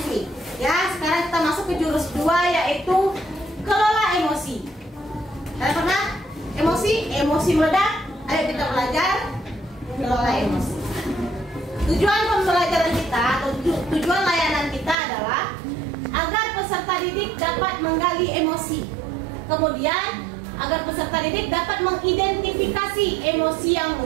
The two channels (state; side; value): drops out; left; at 15.0 s